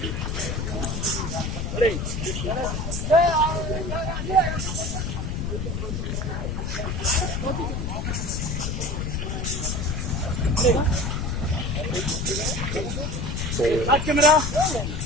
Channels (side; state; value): left; noise; rumble, 2 dB below the sound